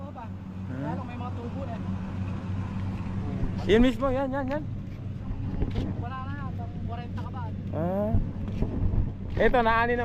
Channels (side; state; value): both; identical; correlation 1.00